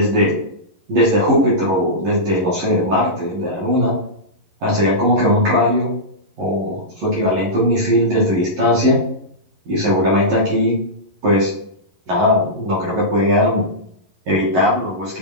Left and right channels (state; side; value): late; left; 11 ms